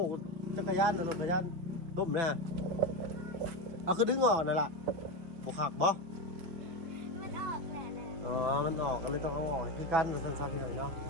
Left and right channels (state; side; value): late; left; 6.1 ms